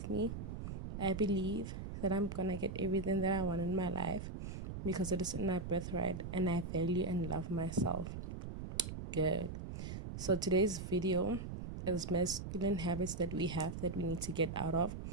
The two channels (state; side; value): noise; right; rumble, 7 dB below the sound